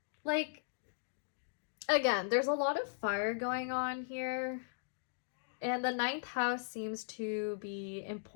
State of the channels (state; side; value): silent; right; digital silence